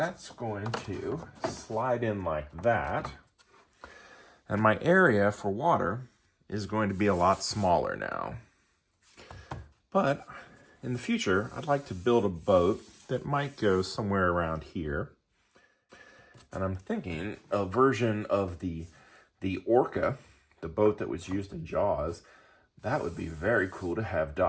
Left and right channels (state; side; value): identical; both; correlation 1.00